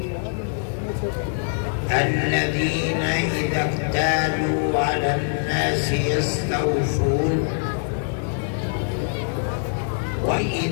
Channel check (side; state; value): right; silent; digital silence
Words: الذين إذا اكتالوا على الناس يستوفون